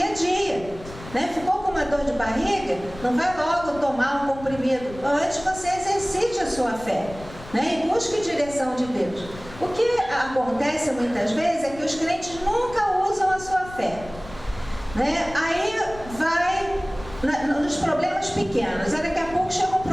a dia, né? Ficou com uma dor de barriga? Não vai logo tomar um comprimido. Antes você exercite a sua fé, né? E busque direção de Deus. O que acontece muitas vezes é que os crentes nunca usam a sua fé, né? Aí vai nos problemas pequenos, aí daqui a pouco chega um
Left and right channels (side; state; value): left; noise; rumble, 16 dB below the sound